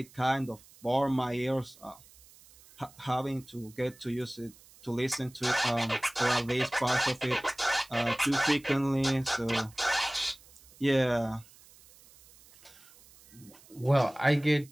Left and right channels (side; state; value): right; noise; hiss, 25 dB below the sound